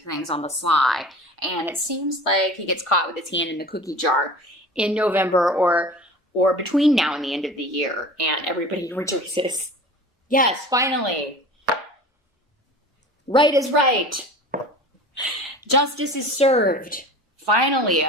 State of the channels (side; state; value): both; normal; correlation 0.38